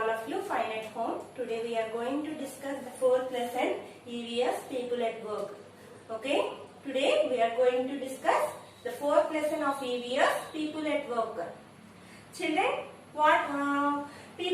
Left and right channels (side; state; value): both; identical; correlation 1.00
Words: of you fine at home. Today we are going to discuss the fourth lesson, EVS, People at Work. Okay, today we are going to discuss the fourth lesson of EVS, People at Work. Children, what